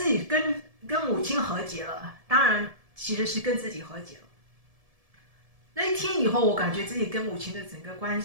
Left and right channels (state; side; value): late; left; 1.7 ms